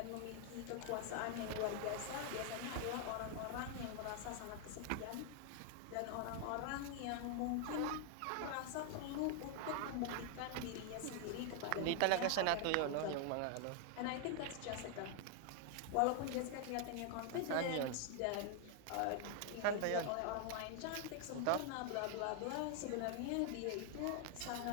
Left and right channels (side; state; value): both; different; correlation 0.00